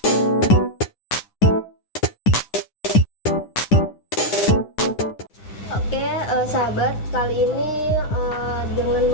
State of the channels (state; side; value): late; right; 9.8 ms